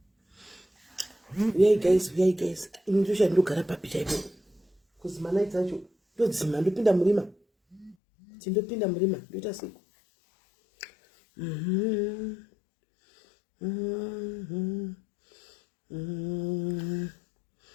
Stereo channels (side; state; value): right; drops out; at 8.0 s